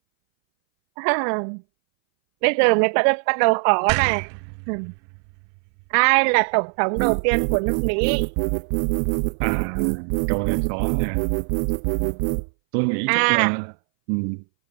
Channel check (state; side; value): silent; left; 61 dB below the other